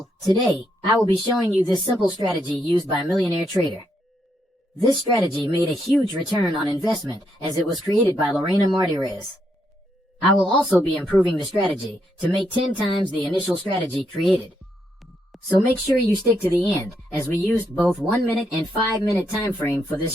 today, I will be showing you this simple strategy used by a millionaire trader. This strategy made a huge return on investment as it was created by Lorena Martinez. I will also be improving the strategy to make 10 times the initial strategy created. So make sure you stick to the end, as we used both 1 minute and 5 minute time frame for this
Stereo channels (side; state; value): both; normal; correlation 0.78